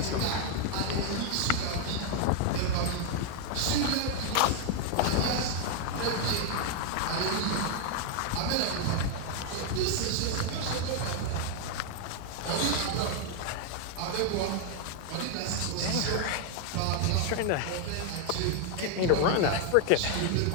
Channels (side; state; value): both; different; correlation 0.00